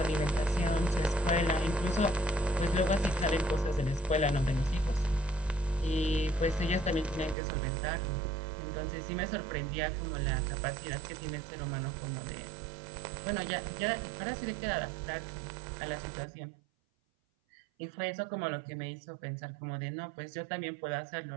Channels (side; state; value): left; drops out; at 7.4 s